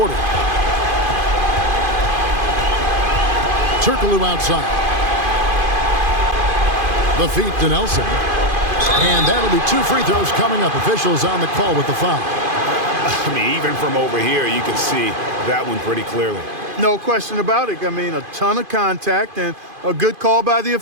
Turkoglu outside. The feet to Nelson. And that'll be 2 free throws coming up. Officials on the call with the foul. I mean, even from over here, you can see that one pretty clearly. No question about it. I mean, a ton of contact and a good call by the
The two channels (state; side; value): late; left; 2.5 ms